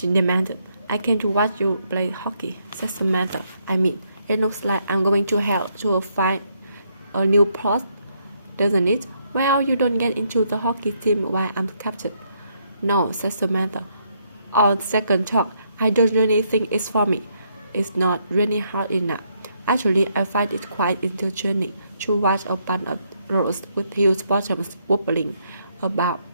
demanded. I came to watch you play hockey, said Samantha. I mean, it looks like I'm going to hell to find a new post, doesn't it? Well, you don't get into the hockey team while I'm captain. No, said Samantha. On second thought, I don't really think it's for me. It's not really hard enough. Actually, I find it quite entertaining to watch a bunch of girls with huge bottoms wobbling about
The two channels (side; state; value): both; inverted; correlation -0.74